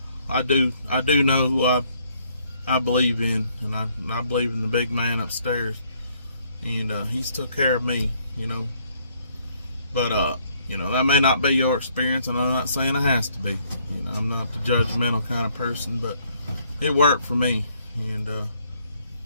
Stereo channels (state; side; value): inverted; both; correlation -0.68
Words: I do know who I believe in, and I believe in the big man upstairs, and he's took care of me, you know. But you know, that may not be your experience, and I'm not saying it has to be. You know, I'm not the judgmental kind of person, but it worked for me. And